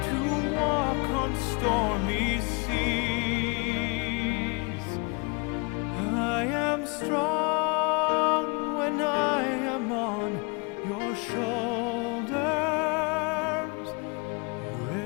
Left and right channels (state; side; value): quieter; right; 30.4 dB